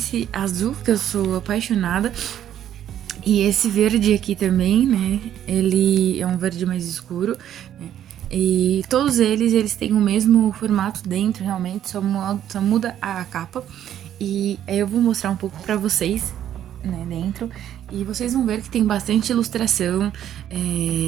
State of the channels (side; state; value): left; quieter; 10.8 dB